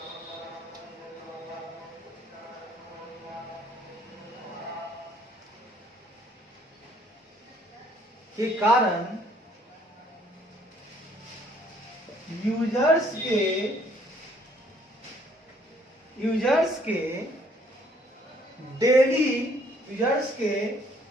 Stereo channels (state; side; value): normal; both; correlation 0.63